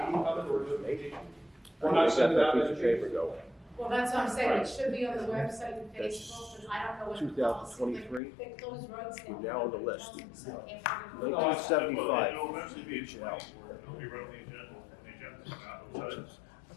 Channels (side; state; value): right; drops out; at 8.2 s